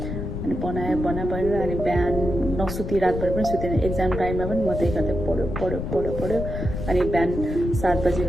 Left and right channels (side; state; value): left; noise; rumble, 5 dB below the sound